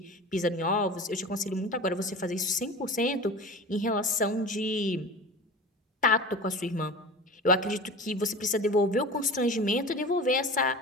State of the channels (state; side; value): normal; both; correlation 0.35